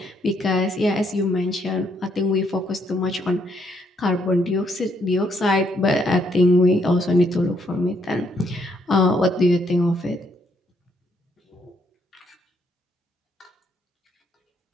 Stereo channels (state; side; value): normal; both; correlation 0.72